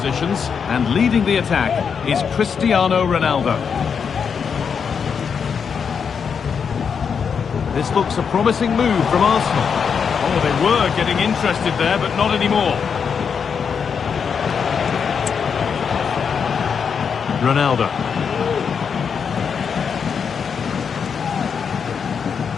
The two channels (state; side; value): quieter; right; 6.5 dB